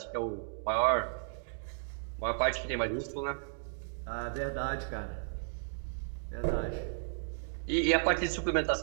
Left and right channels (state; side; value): silent; left; digital silence